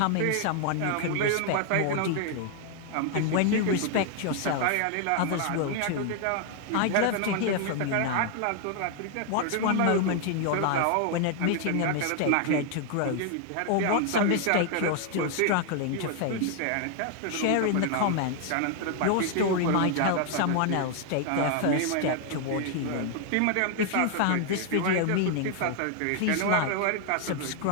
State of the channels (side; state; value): both; different; correlation 0.00